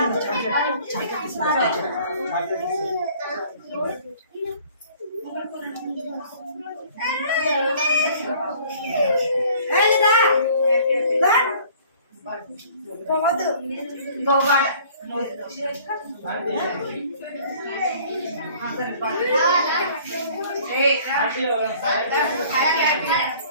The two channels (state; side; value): inverted; both; correlation -0.53